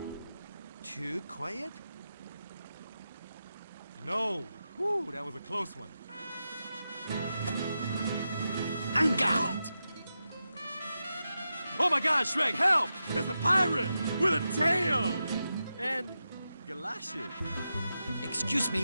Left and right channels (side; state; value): both; inverted; correlation -0.89